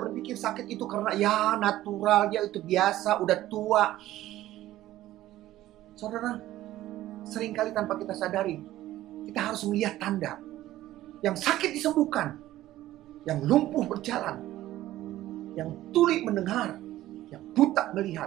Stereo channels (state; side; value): quieter; left; 14.7 dB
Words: sakit itu karena ya natural, ya itu biasa, udah tua. Saudara, seringkali tanpa kita sadari, kita harus melihat tanda. Yang sakit disembuhkan, yang lumpuh berjalan, yang tuli mendengar, yang buta